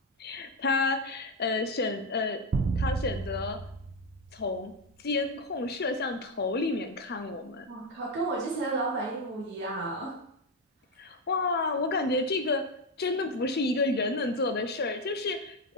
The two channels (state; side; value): normal; both; correlation 0.09